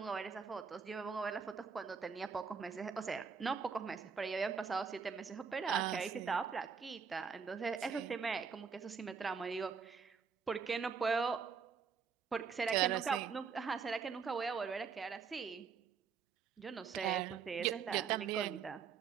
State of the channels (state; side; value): quieter; left; 6.0 dB